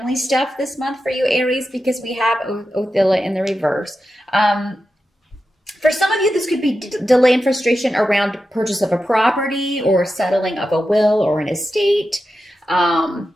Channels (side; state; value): both; normal; correlation 0.91